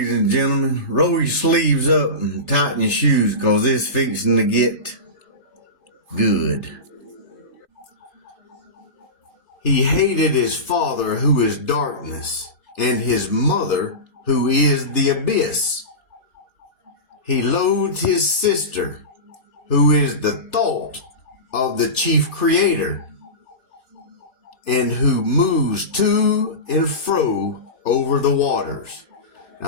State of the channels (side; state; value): right; late; 3.3 ms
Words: and gentlemen, roll your sleeves up and tighten your shoes because it's fixing to get good. He hated his father, who is darkness, and his mother, who is the abyss. He loathed his sister, who is the thought of the chief creator, and who moves to and fro over the waters.